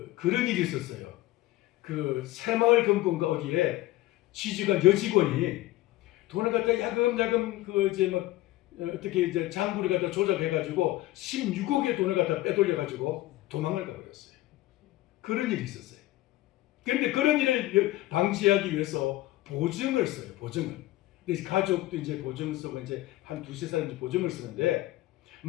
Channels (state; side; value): quieter; right; 16.9 dB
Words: 그런 일이 있었어요. 그 새마을 금고인가 어디에 취직한 여직원이 돈을 갖다 야금야금 그 이제 막 어떻게 이제 장부를 갖다 조작해가지고 16억의 돈을 갖다 빼돌려가지고 도망을 가버렸어요. 그런 일이 있었어요. 그런데 그런 일을 방지하기 위해서 보증을 써요. 보증을. 근데 가족도 이제 보증을 쓰고 이제 한 두세 사람 보증을 쓰는데